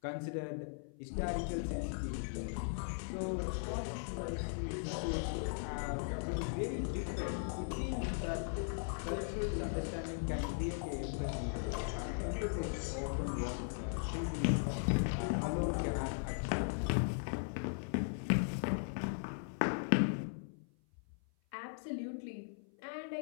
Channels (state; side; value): silent; right; 52 dB below the other